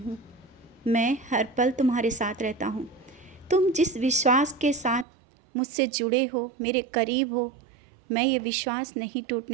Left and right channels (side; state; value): left; drops out; at 5.1 s